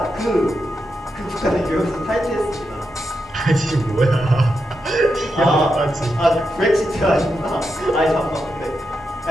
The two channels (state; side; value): normal; both; correlation 0.86